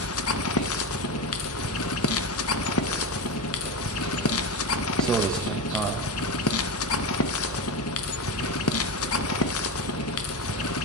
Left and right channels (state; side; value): normal; both; correlation 0.18